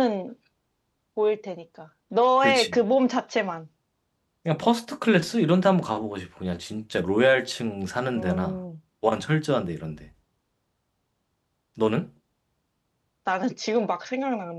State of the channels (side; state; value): both; identical; correlation 1.00